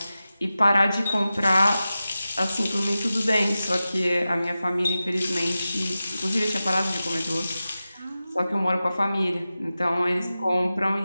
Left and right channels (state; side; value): inverted; both; correlation -0.94